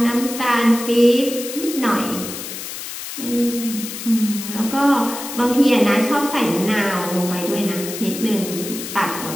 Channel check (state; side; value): noise; left; hiss, 9 dB below the sound